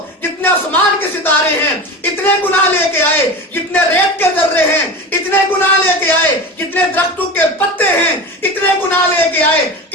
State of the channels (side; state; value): both; normal; correlation 0.28